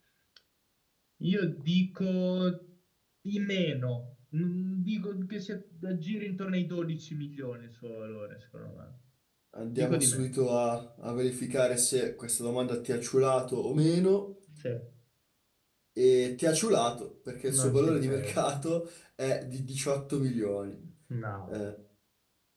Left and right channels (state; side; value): identical; both; correlation 1.00